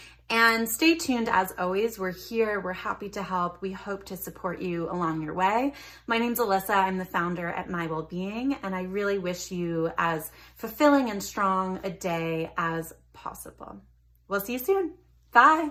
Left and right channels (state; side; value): identical; both; correlation 1.00